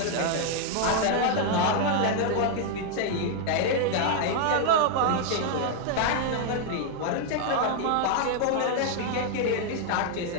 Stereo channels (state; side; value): different; both; correlation 0.00